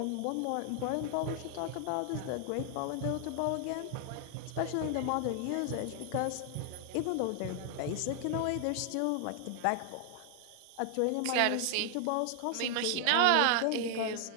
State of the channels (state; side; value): different; both; correlation 0.00